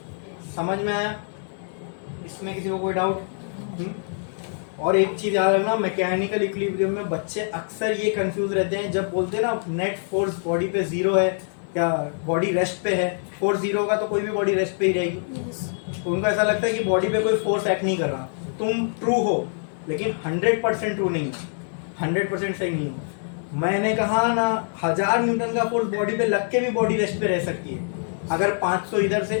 समझ में आया? इसमें किसी को कोई डाउट? और एक चीज याद रखना, मैकेनिकल इक्विलिब्रियम में बच्चे अक्सर ये कंफ्यूज रहते हैं जब बोलते हैं ना नेट फोर्स बॉडी पे 0 है या बॉडी रेस्ट पे है. फोर्स 0 होगा तो कोई भी बॉडी रेस्ट पे ही रहेगी. तो उनको ऐसा लगता है कि बॉडी पे कोई फोर्स एक्ट नहीं कर रहा. तुम ट्रू हो, लेकिन 100% ट्रू नहीं हो, 100% सही नहीं हो. मैंने कहा ना 1000 न्यूटन का फोर्स बॉडी पे लग के भी बॉडी रेस्ट पे रह सकती है. अगर 500 इधर से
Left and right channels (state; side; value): silent; right; digital silence